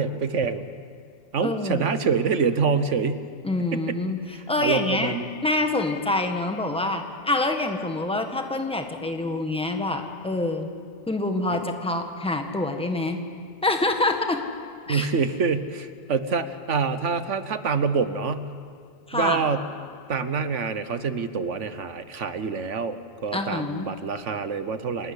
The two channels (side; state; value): both; normal; correlation 0.04